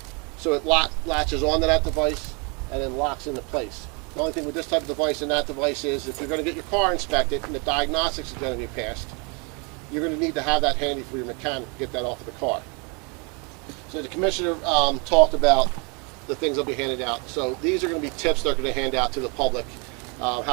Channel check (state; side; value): quieter; left; 32.6 dB